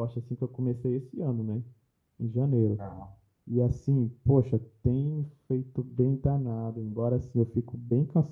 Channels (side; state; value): both; identical; correlation 1.00